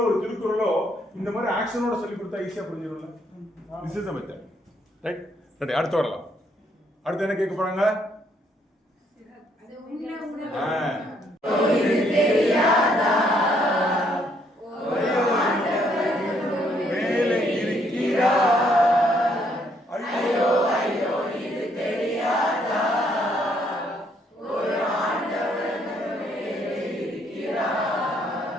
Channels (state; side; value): normal; both; correlation 0.70